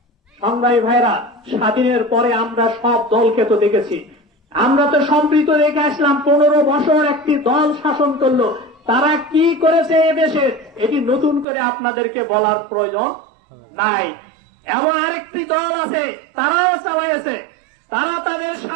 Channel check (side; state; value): left; drops out; at 11.5 s